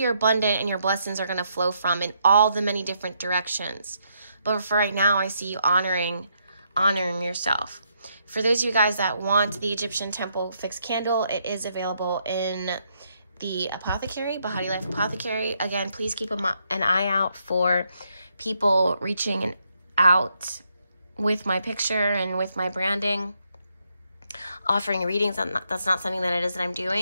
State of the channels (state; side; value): inverted; both; correlation -0.76